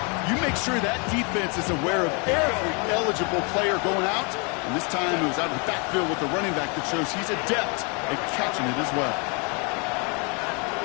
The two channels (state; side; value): quieter; right; 33.9 dB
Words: You make sure that defense is aware of every eligible player going out. And this time it was out of the backfield with the running back that shows he's adept at catching it as well.